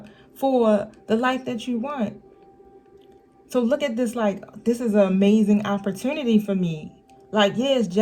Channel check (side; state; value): both; identical; correlation 1.00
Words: for the life that you want. So look at this like, this is an amazing opportunity for me. Like, yeah, it's